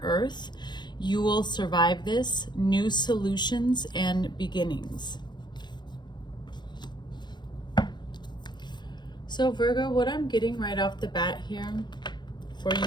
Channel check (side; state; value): right; late; 0.21 ms